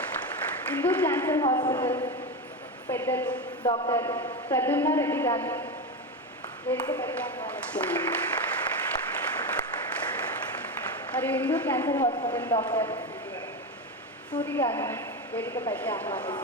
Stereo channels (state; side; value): normal; both; correlation 0.16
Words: హిందూ క్యాన్సర్ హాస్పిటల్ పెద్దలు డాక్టర్ ప్రద్యుమ్న రెడ్డి గారిని వేదికపైకి ఆహ్వానిస్తున్నాను. మరియు Hindu cancer hospital doctor Suri గారిని వేదికపైకి